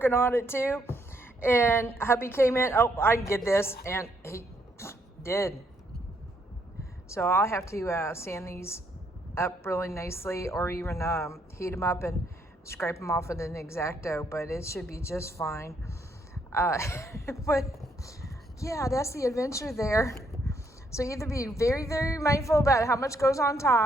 on it too. And hubby came in, oh, I can get this, and he did. So I'll have to sand these up really nicely, or even heat them up and scrape them off with an X-Acto, but it should be just fine. But yeah, that's the adventure there. So either be very, very mindful about how much goes on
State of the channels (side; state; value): both; normal; correlation 0.73